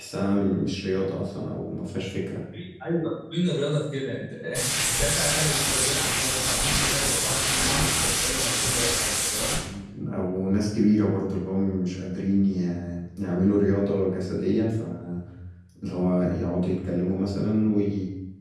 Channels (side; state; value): both; identical; correlation 1.00